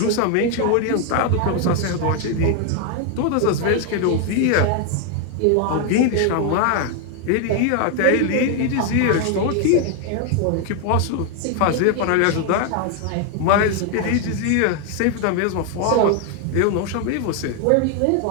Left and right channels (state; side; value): different; both; correlation 0.01